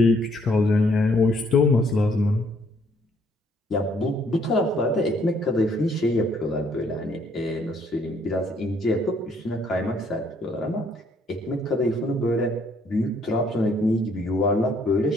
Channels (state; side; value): normal; both; correlation 0.66